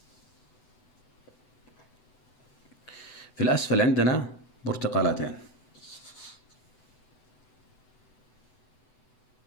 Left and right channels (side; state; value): right; late; 8.0 ms